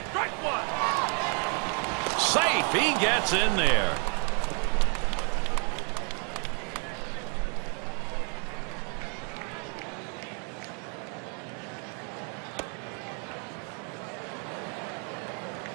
Strike one. Safe. He gets in there.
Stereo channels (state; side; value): quieter; left; 38.7 dB